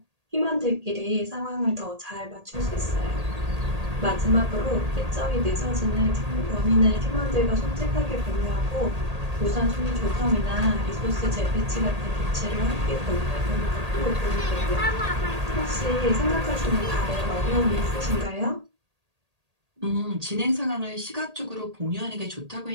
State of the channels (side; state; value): left; late; 1.8 ms